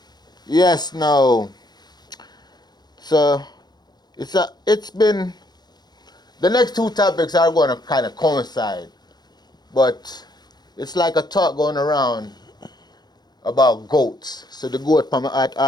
Yes, no. So it's been the next two topics are going to kind of coincide, but it's like a talk going around about goats. So the goat from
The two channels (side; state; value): right; late; 0.20 ms